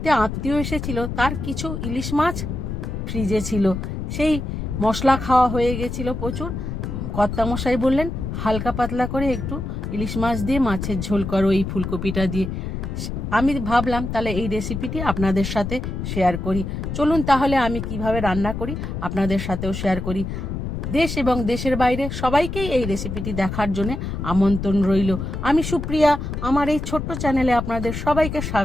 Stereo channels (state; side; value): noise; left; rumble, 5 dB below the sound